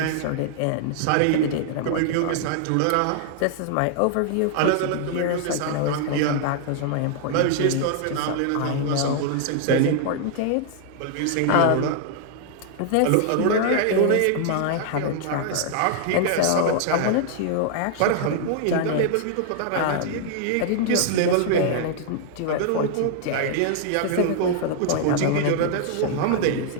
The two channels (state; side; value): different; both; correlation 0.00